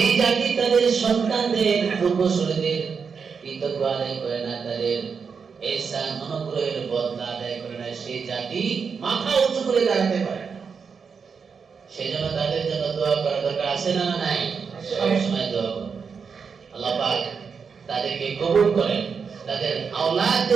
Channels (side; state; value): left; quieter; 5.8 dB